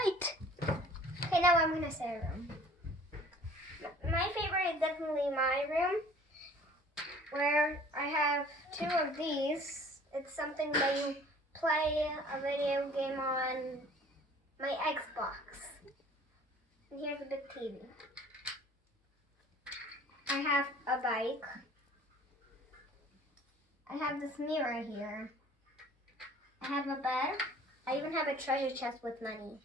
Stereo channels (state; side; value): normal; both; correlation 0.50